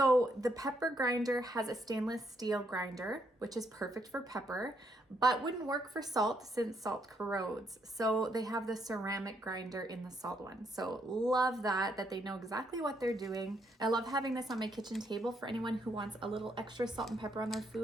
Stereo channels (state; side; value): normal; both; correlation 0.75